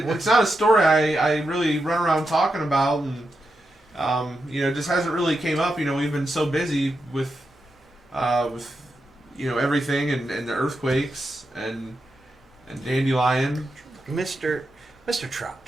not a story I really run around talking about, and it just hasn't really came up. We've been so busy with everything and the earthquakes and Dandelion. Mr.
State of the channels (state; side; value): normal; both; correlation 0.86